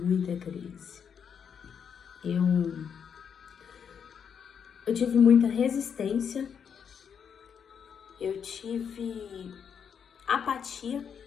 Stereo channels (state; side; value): quieter; right; 7.3 dB